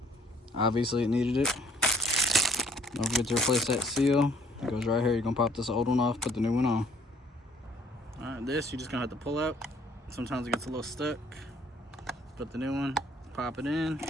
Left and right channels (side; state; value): both; normal; correlation 0.59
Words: Obviously it needed it. Don't forget to replace that seal. It goes right here. You're gonna pop this old one off, put the new one on. Alright, this you're just gonna have to pull out. Sometimes it gets a little stuck. Put the new one, pop it in.